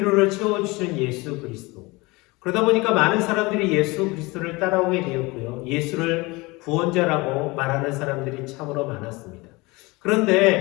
채워주시는 예수 그리스도. 그러다 보니까 많은 사람들이 예수 그리스도를 따라오게 되었고요. 예수를 구원자라고 말하는 사람들이 참으로 많았습니다.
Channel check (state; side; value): quieter; right; 24.0 dB